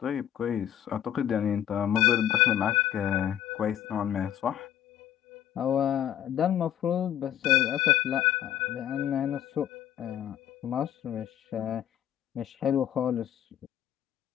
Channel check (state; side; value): quieter; right; 11.0 dB